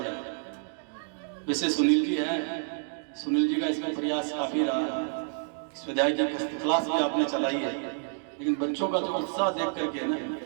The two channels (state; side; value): silent; left; digital silence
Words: जाए। वैसे सुनील जी हैं, सुनील जी का इसमें प्रयास काफी रहा है, स्वाध्याय जी क्लास भी आपने चलाई है, लेकिन बच्चों का जो उत्साह देख करके ना,